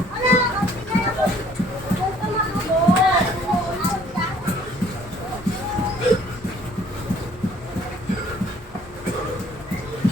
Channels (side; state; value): both; normal; correlation 0.59